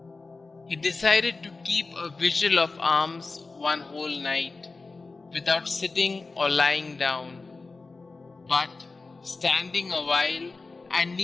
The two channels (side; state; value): right; quieter; 3.9 dB